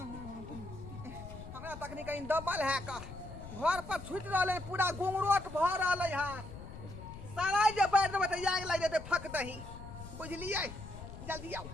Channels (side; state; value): left; noise; rumble, 12 dB below the sound